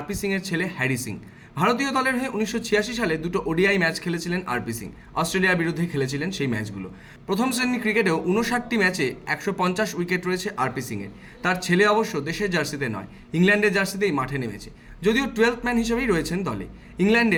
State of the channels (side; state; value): both; identical; correlation 1.00